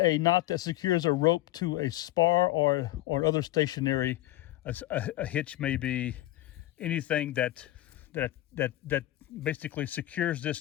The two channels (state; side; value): quieter; right; 16.0 dB